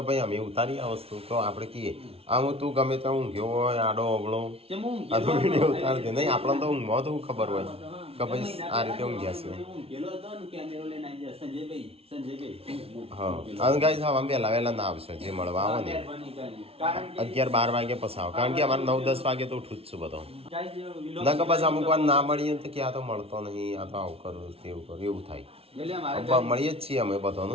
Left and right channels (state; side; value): late; left; 0.28 ms